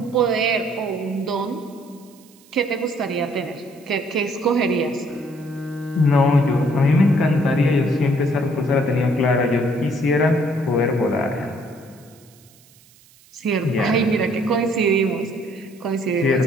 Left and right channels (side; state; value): right; noise; hiss, 28 dB below the sound